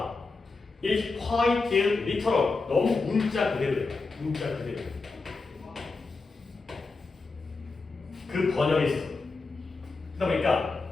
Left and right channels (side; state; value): right; quieter; 3.9 dB